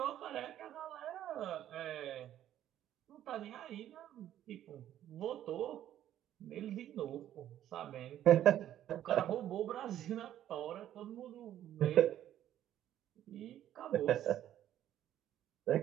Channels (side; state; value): left; quieter; 11.7 dB